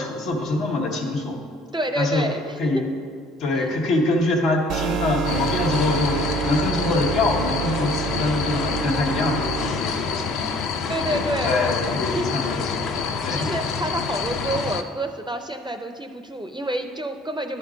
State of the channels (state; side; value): normal; both; correlation 0.55